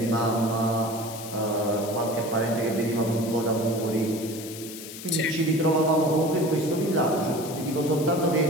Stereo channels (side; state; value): left; noise; hiss, 12 dB below the sound